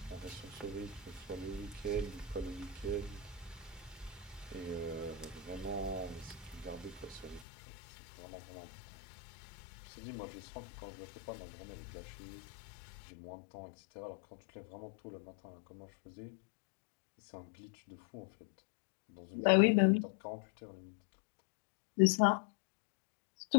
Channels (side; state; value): right; drops out; at 7.5 s